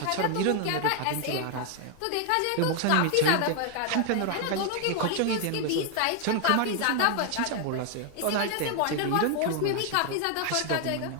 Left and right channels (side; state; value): both; different; correlation 0.00